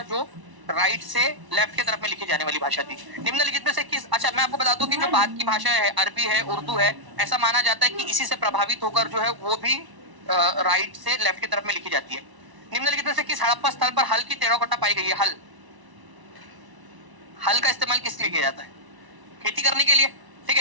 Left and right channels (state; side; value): late; left; 1.0 ms